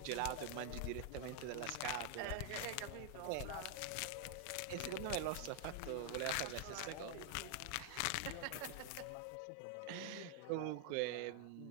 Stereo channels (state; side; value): different; both; correlation 0.00